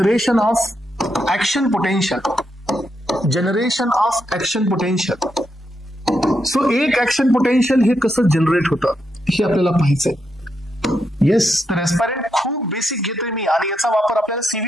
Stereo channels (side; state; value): both; normal; correlation 0.82